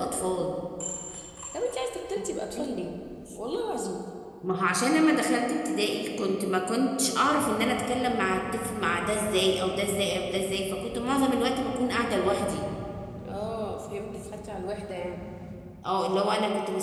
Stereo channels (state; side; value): identical; both; correlation 1.00